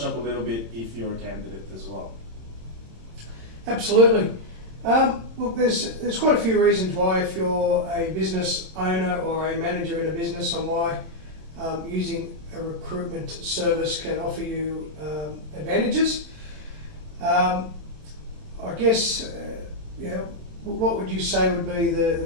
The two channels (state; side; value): late; left; 26 ms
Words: up a little bit if you're a candidate as well. Absolutely. Look, there's quite a few reasons why, if you're a business owner or a manager in a business, on why using a recruitment service can offer you advantages. I guess, what would you say would be the